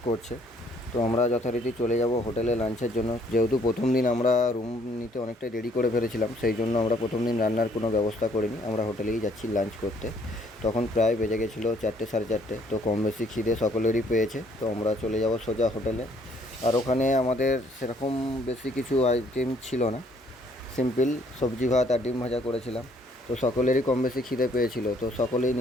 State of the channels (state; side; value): normal; both; correlation 0.64